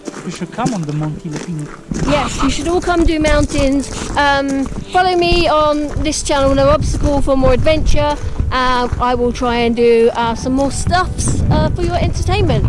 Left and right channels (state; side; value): identical; both; correlation 1.00